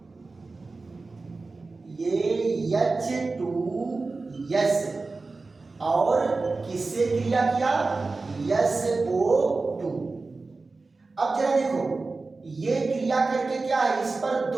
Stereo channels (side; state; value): left; quieter; 3.7 dB